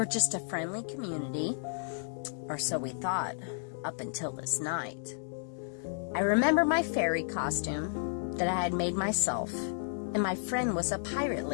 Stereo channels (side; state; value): right; silent; digital silence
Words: just a friendly community, or so we thought, up until this night. I remember my fairy costume that I had made myself, and my friend was a pirate